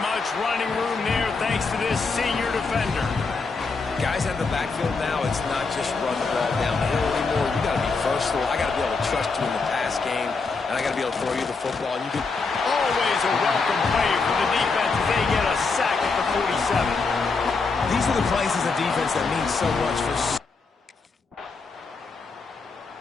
much running room there thanks to this senior defender. Guys at the backfield now, it's not just run the ball downhill anymore. You got to be versatile. I got to be able to trust you in the pass game, and I got to be able to throw you the football. And you can always a welcome play for the defense as they get a sack at the 47. These are the plays as a defense that mean so much for...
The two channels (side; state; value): right; quieter; 4.4 dB